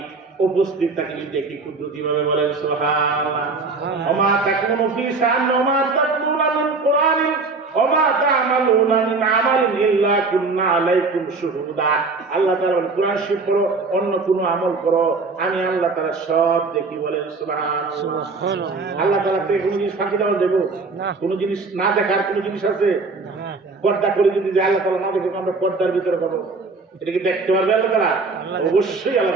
উপস্থিত থাকি দেখি কুদরতি ভাবে। বলেন সুবহানাল্লাহ। ওমা তাকুনু ফি শান ওমা তাতলুনা মিন কুরআনিন ওমা তা'মালুনা মিন আমালিন ইল্লা কুননা আলাইকুম শুহুদা। আল্লাহ তাআলা কুরআন শরীফ পড়ো, অন্য কোনো আমল করো, আমি আল্লাহ তাআলা সব দেখি। বলেন সুবহানাল্লাহ। আল্লাহ তাআলা থেকে কোনো জিনিস ফাঁকি দেওয়া দেব না, কোনো জিনিস না দেখার কোনো জিনিস আছে? পর্দা করে যদি যে আল্লাহ তাআলা না দেখে আমরা পর্দার ভিতরে করবো, এটা কি দেখতে পারবে আল্লাহ তাআলা? অবশ্যই আল্লাহ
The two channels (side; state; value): left; quieter; 4.0 dB